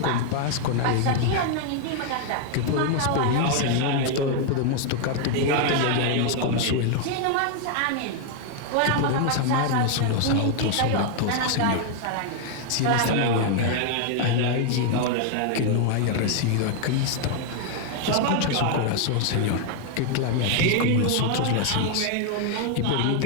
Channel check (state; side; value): different; both; correlation 0.00